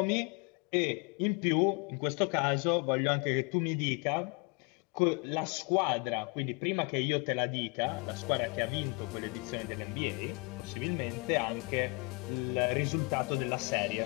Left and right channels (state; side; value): quieter; right; 30.7 dB